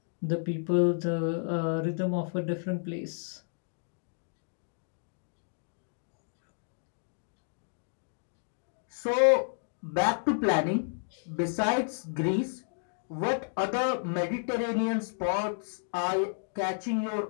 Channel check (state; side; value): silent; right; digital silence